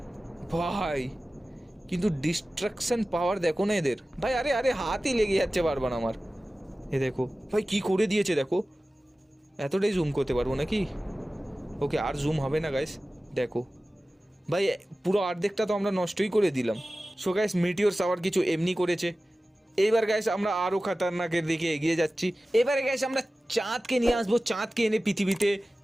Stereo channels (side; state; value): both; normal; correlation 0.96